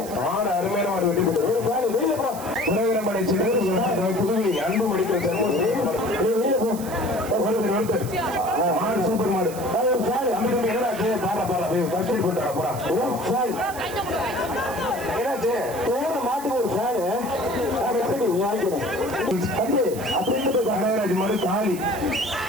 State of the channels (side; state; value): right; noise; hiss, 14 dB below the sound